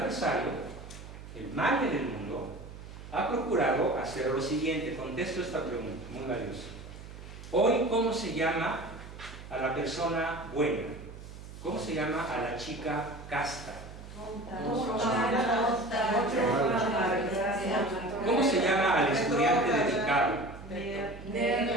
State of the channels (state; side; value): noise; right; hum, 14 dB below the sound